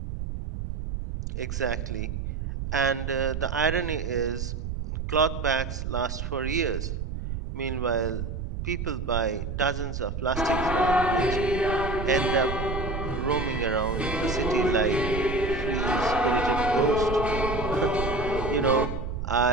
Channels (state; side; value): noise; right; rumble, 5 dB below the sound